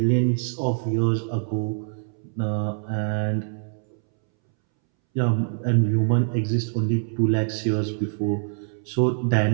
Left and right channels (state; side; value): silent; left; 62 dB below the other